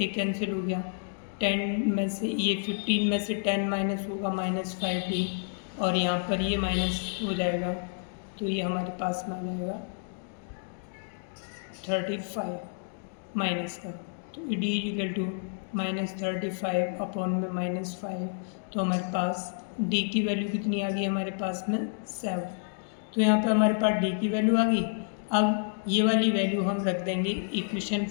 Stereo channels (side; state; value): right; silent; digital silence